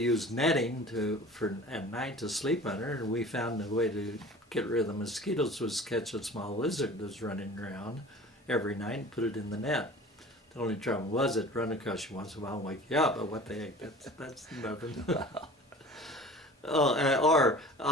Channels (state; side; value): normal; both; correlation 0.42